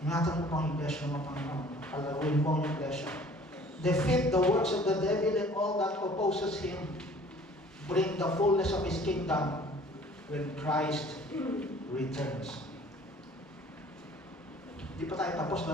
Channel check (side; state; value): both; normal; correlation 0.51